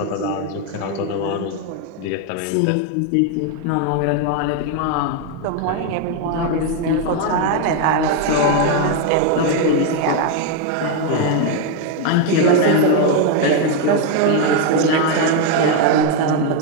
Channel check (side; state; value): both; different; correlation 0.01